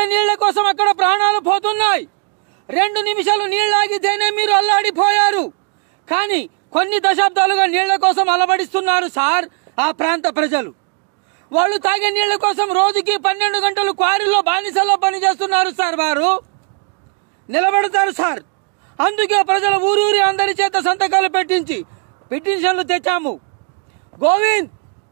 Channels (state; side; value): quieter; left; 38.1 dB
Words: నీళ్ల కోసం అక్కడ ప్రాణాలు పోతున్నాయి. 2 నిమిషాలు నీళ్లాగితేనే మీరు అల్లాడిపోయారు. కానీ కొన్ని దశాబ్దాలుగా నీళ్ల కోసం అలబడిస్తున్నారు సార్ ఆ ప్రాంత ప్రజలు. వాళ్ళు తాగే నీళ్ల కోసం రోజుకి 12 గంటలు క్వారీలో బానిసల్లో పనిచేస్తున్నారు సార్. వారు నిలబడతారు సార్. అందుకే ప్రజల ఊరూరి అందరి చేత సంతకాలు పెట్టించి పిటిషన్లు తెచ్చాము. గోవింద్,